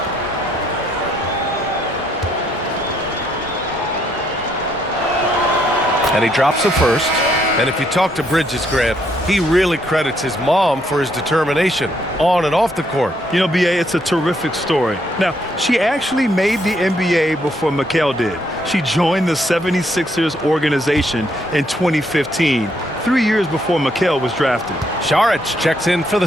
And he drops the first. And if you talk to Bridges, Grant, he really credits his mom for his determination on and off the court. You know, B.A., it's a terrific story. Now, she actually made the NBA before Mikal did. She joined the 76ers organization in 2015, 3 years before Mikal was drafted. Saric checks in for the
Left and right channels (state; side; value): normal; both; correlation 0.72